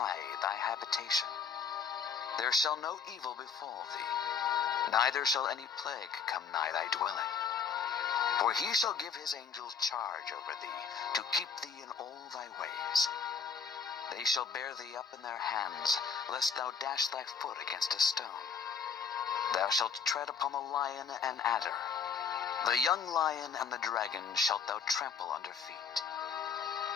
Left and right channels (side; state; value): right; quieter; 6.2 dB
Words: thy habitation. There shall no evil befall thee, neither shall any plague come nigh thy dwelling. For He shall give His angels charge over thee, to keep thee in all thy ways. They shall bear thee up in their hands, lest thou dash thy foot against a stone. Thou shalt tread upon the lion and adder. The young lion and the dragon shalt thou trample under feet.